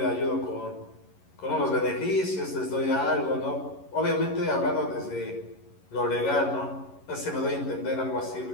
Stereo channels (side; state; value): right; late; 11 ms